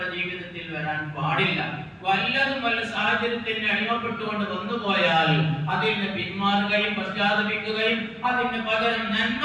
ജീവിതത്തിൽ വരാൻ പാടില്ല. വല്ലതും വല്ല സാഹചര്യത്തിന് അടിമപ്പെട്ടുകൊണ്ട് വന്നുപോയാൽ അതിൽ നിന്ന് പിന്മാറുകയും പശ്ചാത്തപിക്കുകയും അതിന് പകരം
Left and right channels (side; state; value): both; identical; correlation 1.00